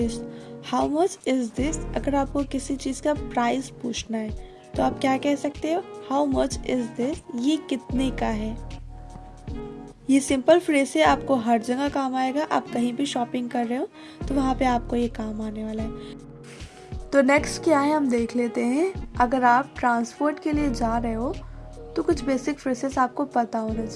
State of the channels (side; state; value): both; identical; correlation 1.00